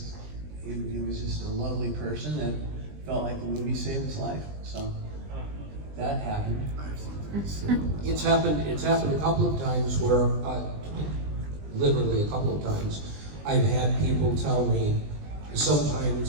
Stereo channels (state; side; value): late; left; 20 ms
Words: he was just a lovely person that felt like the movie saved his life. So that happened. It's happened a couple of times where, literally a couple of times, I've had people tell me,